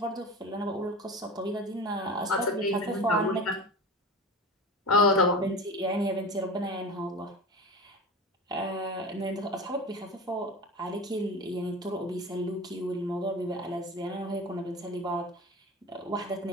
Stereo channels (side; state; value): both; normal; correlation 0.31